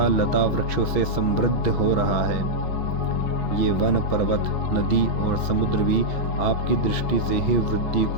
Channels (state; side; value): late; right; 6.4 ms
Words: लता वृक्षों से समृद्ध हो रहा है। ये वन, पर्वत, नदी और समुद्र भी आपकी दृष्टि से ही वृद्धि